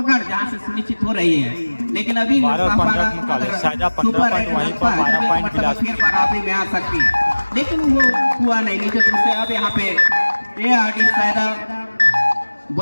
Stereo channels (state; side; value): inverted; both; correlation -1.00